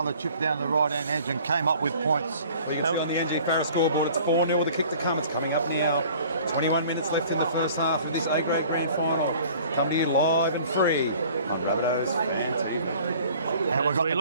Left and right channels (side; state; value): both; inverted; correlation -0.50